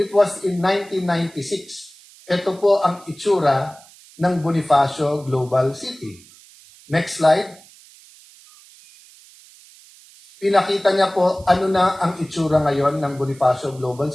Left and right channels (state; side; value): noise; right; hiss, 24 dB below the sound